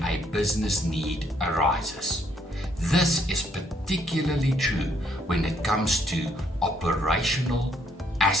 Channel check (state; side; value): normal; both; correlation 0.70